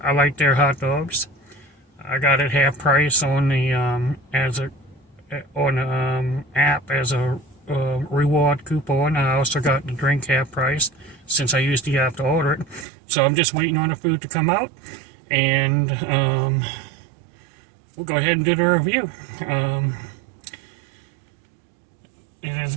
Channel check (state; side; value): drops out; left; at 12.9 s